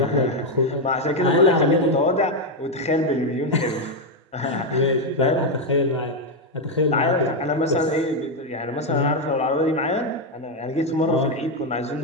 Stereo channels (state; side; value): normal; both; correlation 0.04